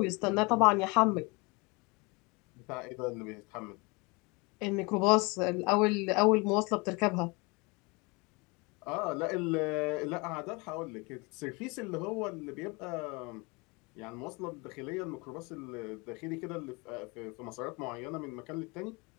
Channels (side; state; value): right; quieter; 27.8 dB